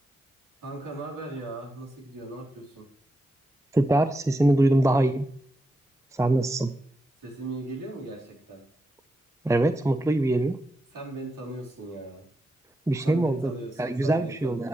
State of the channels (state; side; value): normal; both; correlation 0.87